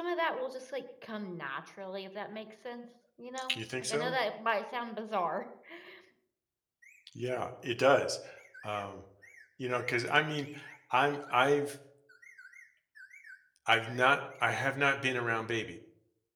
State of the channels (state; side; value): identical; both; correlation 1.00